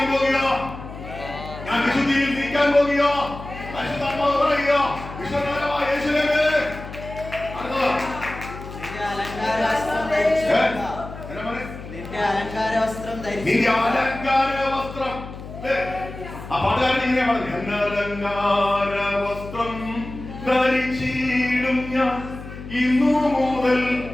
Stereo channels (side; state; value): left; noise; hum, 12 dB below the sound